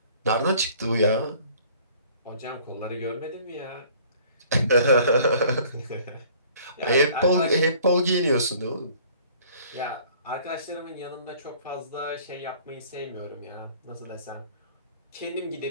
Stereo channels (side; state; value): both; inverted; correlation -0.54